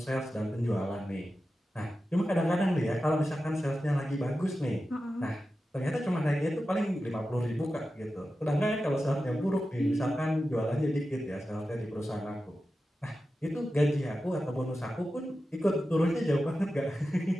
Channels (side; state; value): both; normal; correlation 0.92